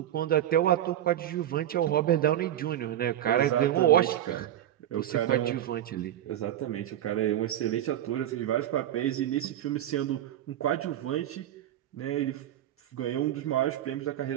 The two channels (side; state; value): left; quieter; 11.9 dB